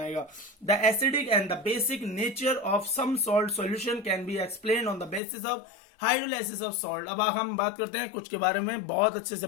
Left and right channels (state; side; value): drops out; right; at 5.2 s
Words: The acidic and the basic nature of some salt solution can be explain on the basis of hydrolysis of salt. अब हम बात करते हैं कुछ के बारे में, बहुत अच्छे से